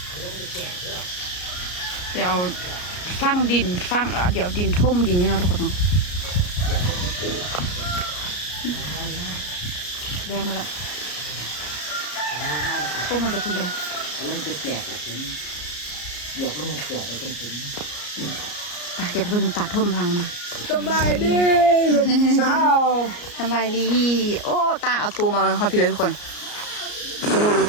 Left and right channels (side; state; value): right; late; 34 ms